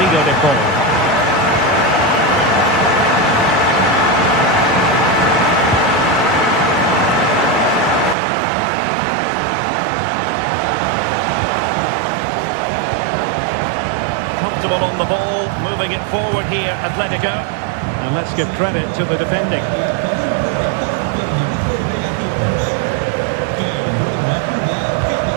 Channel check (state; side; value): drops out; left; at 8.2 s